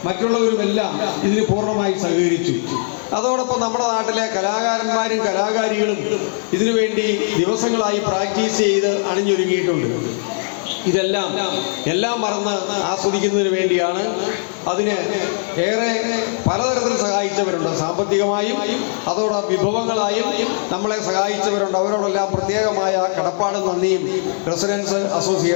മറ്റുള്ളവരുമെല്ലാം ഇതിന് പൂർണ്ണമായി സഹകരിച്ചു. അതോടൊപ്പം നമ്മുടെ നാട്ടിലെ കലാകാരന്മാരും കലാകാരികളും ഇതിനുവേണ്ടി ദിവസങ്ങളായി പ്രാക്ടീസ് ചെയ്ത് അണിഞ്ഞൊരുങ്ങിയിട്ടുണ്ട്. എല്ലാം മറന്ന് ആസ്വദിക്കുന്നതിന് വേണ്ടിയാണ്. അതിന് ഏറെ പലതരത്തിൽ സഹായിച്ചവരുണ്ട്. സാമ്പത്തികമായും അതോടൊപ്പം വിഭവങ്ങളായും നമ്മളെ സഹായിച്ചവരുണ്ട്. അവരോടെല്ലാം പ്രത്യേകമായ കടപ്പാടും നന്ദിയും റെസിഡൻസ്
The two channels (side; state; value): right; silent; digital silence